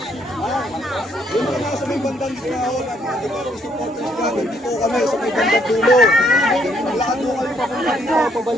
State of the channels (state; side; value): normal; both; correlation 0.69